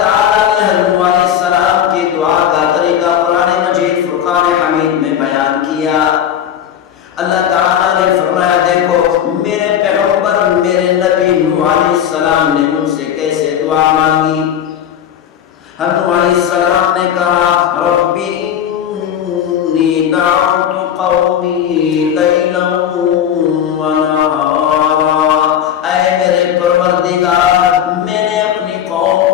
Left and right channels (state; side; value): quieter; right; 9.6 dB